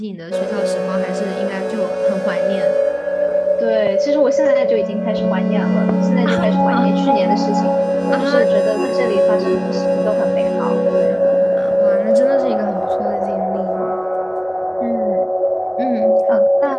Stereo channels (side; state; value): both; identical; correlation 1.00